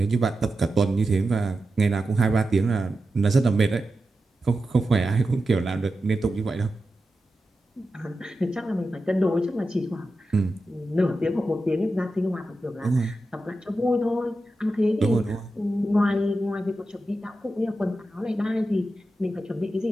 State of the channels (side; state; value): both; normal; correlation 0.90